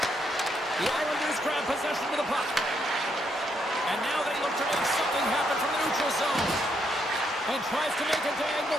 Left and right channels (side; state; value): both; normal; correlation 0.76